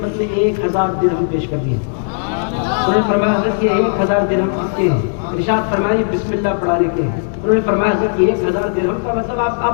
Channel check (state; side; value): silent; right; digital silence